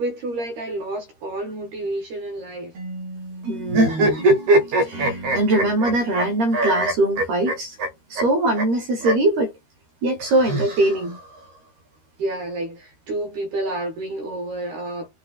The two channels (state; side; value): late; left; 13 ms